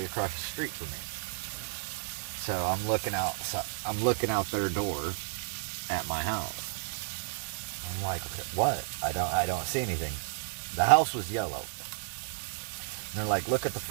across the street from me. So I'm looking out their door at my house. I'm like, okay, what? I don't see anything. The house was yellow. And they're like, look at the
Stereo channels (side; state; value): left; silent; 56 dB below the other